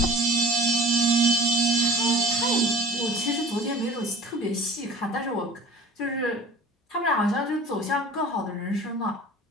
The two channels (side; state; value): both; normal; correlation 0.42